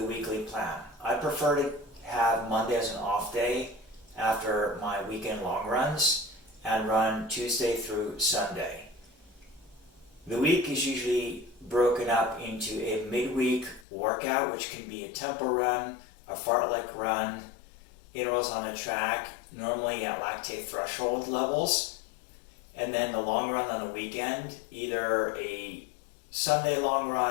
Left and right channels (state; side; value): drops out; right; at 13.9 s